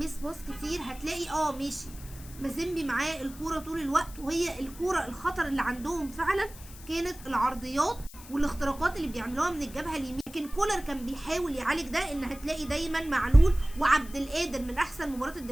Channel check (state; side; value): noise; left; hiss, 18 dB below the sound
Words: باص كتير هتلاقي ماشي مازيمبي معاه الكوره طول الوقت، وهي الكوره الخطر اللي عندهم فعلا كانت العرضيات والاختراقات اللي بيعملوها من الجبهه اليمين. لكن كولر كان بيحاول يعالج ده، ان هتلاقي دايما معلول وعبد القادر من احسن المباريات